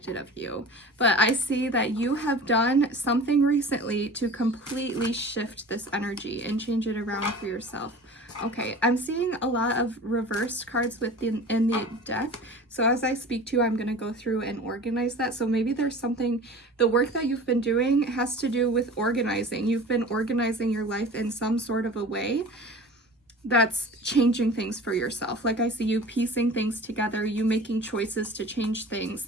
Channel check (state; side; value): normal; both; correlation 0.39